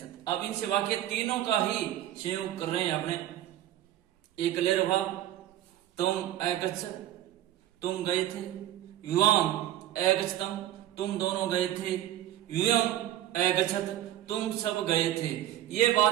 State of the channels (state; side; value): quieter; left; 13.0 dB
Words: अब इनसे वाक्य तीनों का ही संयोग कर रहे हैं अपने। एक क्लियर भाव, तुम ए गच्छ, तुम गए थे। युवाम ए गच्छतम, तुम दोनों गए थे। युयम ए गच्छत, तुम सब गए थे। ये